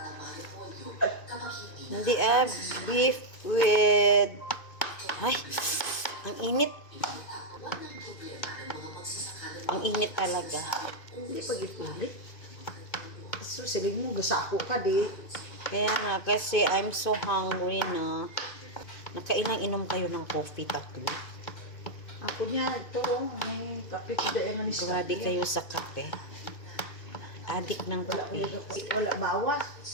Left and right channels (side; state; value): right; late; 2.6 ms